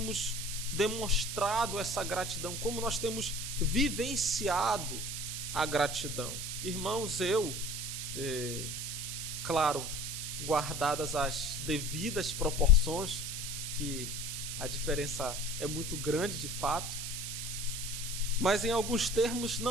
demonstrado essa gratidão, como nós temos vivenciado a gratidão? Irmãos, claro, guardadas as devidas proporções, que a diferença é muito grande de fato, mas em alguns termos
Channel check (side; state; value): right; noise; hiss, 5 dB below the sound